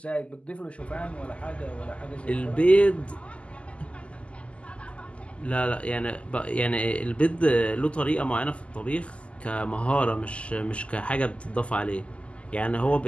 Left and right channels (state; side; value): late; right; 0.057 ms